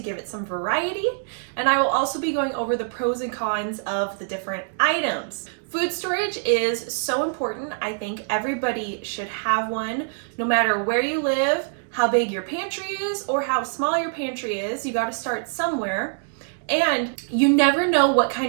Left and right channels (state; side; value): silent; left; digital silence